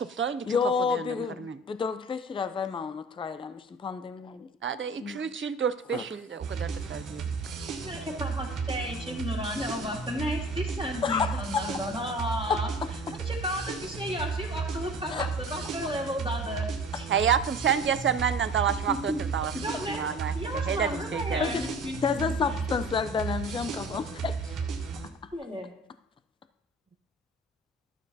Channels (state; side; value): normal; both; correlation 0.41